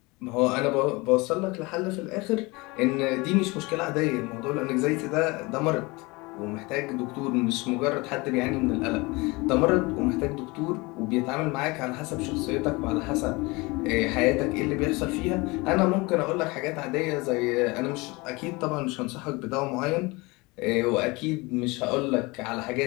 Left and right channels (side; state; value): right; quieter; 24.5 dB